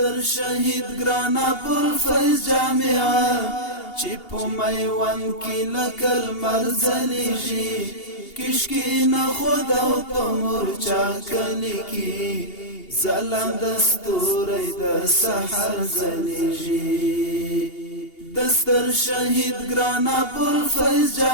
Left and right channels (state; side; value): late; right; 2.8 ms